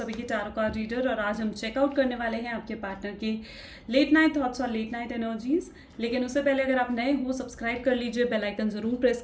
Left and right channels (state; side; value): identical; both; correlation 1.00